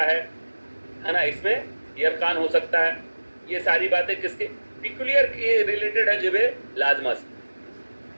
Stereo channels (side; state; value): both; inverted; correlation -1.00